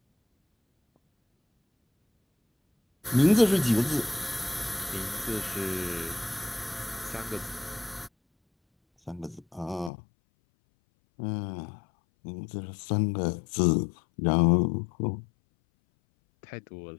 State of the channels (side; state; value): right; drops out; at 9.9 s